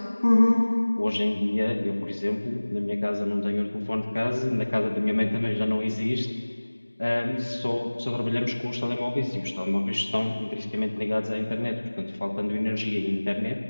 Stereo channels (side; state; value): both; inverted; correlation -1.00